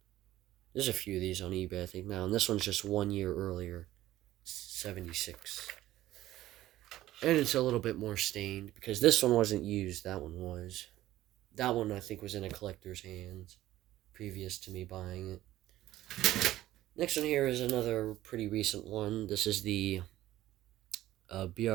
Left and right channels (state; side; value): quieter; left; 14.8 dB